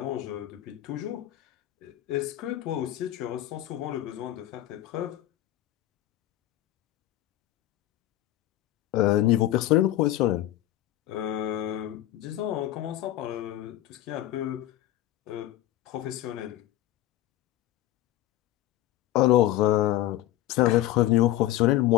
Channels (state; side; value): quieter; right; 14.0 dB